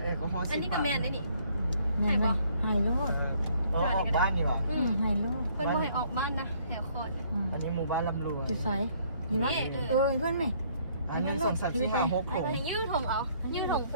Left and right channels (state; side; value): inverted; both; correlation -0.64